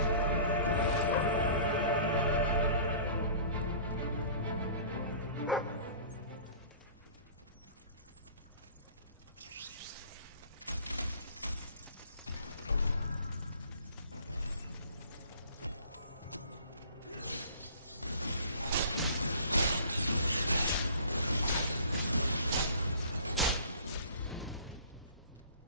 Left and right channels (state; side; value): inverted; both; correlation -0.46